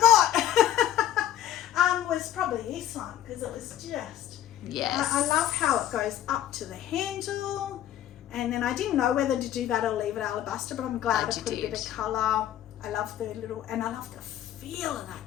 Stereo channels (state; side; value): quieter; right; 11.5 dB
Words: Was probably this one because it was just... Yes. I love how it goes up to the handle. And then I didn't know whether to do that or leave it alabaster, but I'm glad I put a bit of colour. I love the and I love the feel of